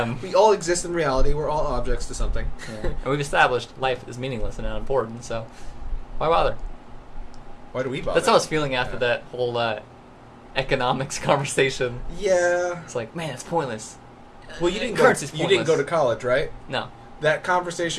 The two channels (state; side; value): identical; both; correlation 1.00